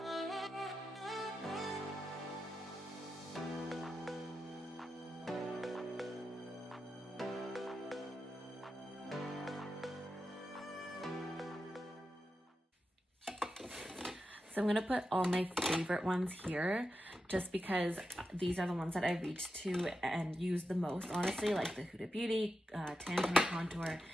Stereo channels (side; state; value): both; normal; correlation 0.89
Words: So I'm gonna put all my favorite ones here just because these are the ones that I reach to and use the most, honestly, like the Huda Beauty, Tan Contour,